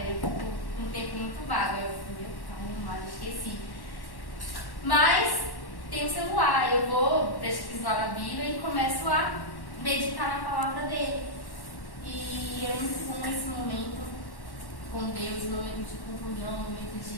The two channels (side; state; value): right; late; 1.1 ms